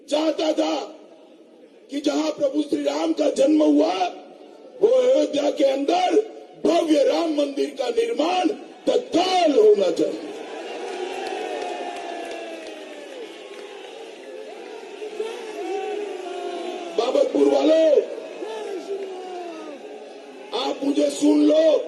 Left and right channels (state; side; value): identical; both; correlation 1.00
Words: चाहता था कि जहां प्रभु श्री राम का जन्म हुआ, वो अयोध्या के अंदर भव्य राम मंदिर का निर्माण तत्काल होना चाहिए। बाबतपुर वालों, आप मुझे सुन लो।